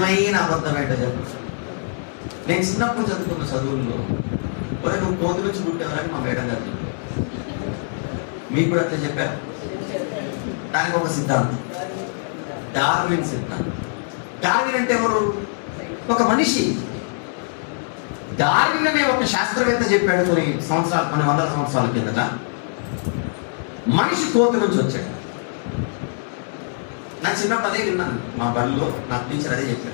అబద్ధం ఏంటో చెప్పండి. నేను చిన్నప్పుడు చదువుకున్న చదువుల్లో ఒరే నువ్వు కోతి నుంచి పుట్టేవారని మా మేడం గారు చెప్పారు. మీకు కూడా అట్లా చెప్పారు. దానికి ఒక సిద్ధాంతం, డార్విన్ సిద్ధాంతం. డార్విన్ అంటే ఎవరు? ఒక మనిషి. డార్విన్ అనే ఒక శాస్త్రవేత్త చెప్పాడు కొన్ని వందల సంవత్సరాల కిందట, మనిషి కోతి నుంచి వచ్చాడు. నా చిన్నప్పుడు అదే విన్నాను. మా బడిలో నా టీచర్ అదే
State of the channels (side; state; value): right; silent; digital silence